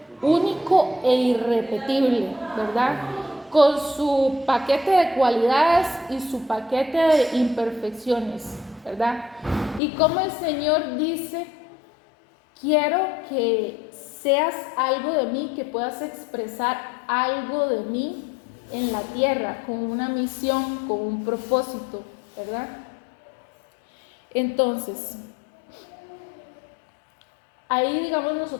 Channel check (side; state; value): right; drops out; at 9.8 s